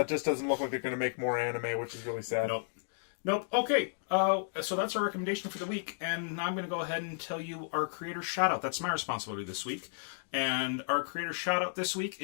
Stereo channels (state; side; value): silent; right; digital silence